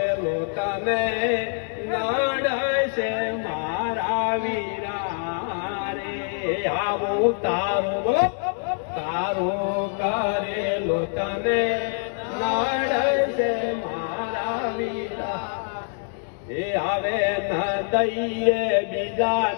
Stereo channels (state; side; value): silent; right; 58 dB below the other